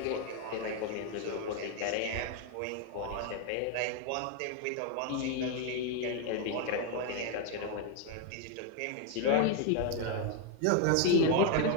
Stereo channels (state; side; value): different; both; correlation 0.01